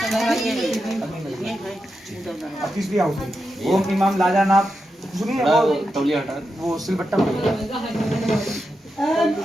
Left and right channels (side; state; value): both; normal; correlation 0.88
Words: अब तीसरी आहुति ओम इमाम लाजानाप सुनिए वो सिलबट्टा